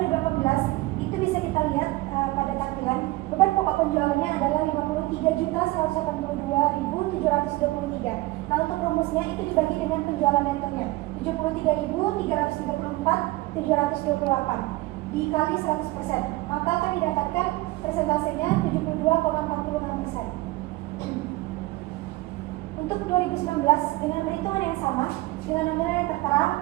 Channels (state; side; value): quieter; left; 19.7 dB